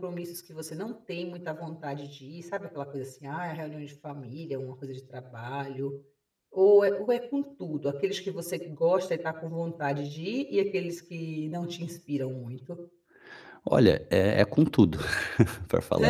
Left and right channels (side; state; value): both; identical; correlation 1.00